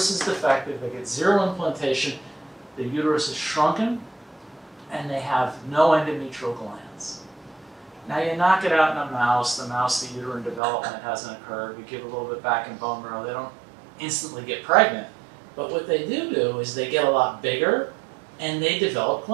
is defective, they get zero implantation, the uterus is shrunken, and they have no endometrial glands. Now you knock it out in a mouse, the uterine development hasn't occurred, we give a little bit back in bone marrow, they don't instantly get pregnant. But what they do is they get a lot bigger, and they develop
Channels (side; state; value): left; drops out; at 10.6 s